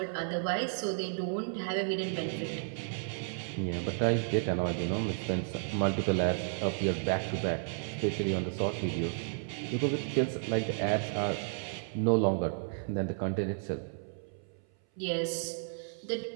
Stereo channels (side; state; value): left; silent; 56 dB below the other